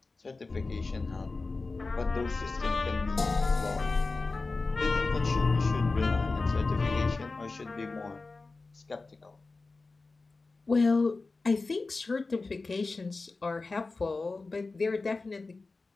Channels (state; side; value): quieter; right; 3.7 dB